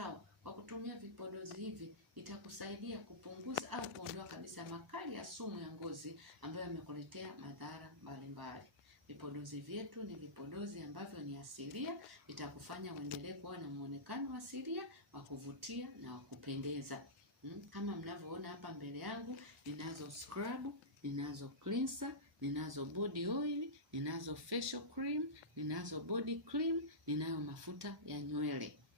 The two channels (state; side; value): normal; both; correlation -0.18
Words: kwa kutumia vipodozi hivi itakusaidia kupunguza au kuondoa kabisa makali ya sumu ya ngozi ambayo yamekuletea madhara mbalimbali. Vipodozi vyetu ni vipodozi ambavyo ni asilia, vitakufanya uendelee kuwa na muonekano asilia wa kuvutia na wa kupendeza. Kama mnavyoona hapa mbele yangu, ninazo scrub, ninazo cleanser, ninazo body oil, ninazo facial cream, ninazo body cream, ninayo mafuta ya nywele.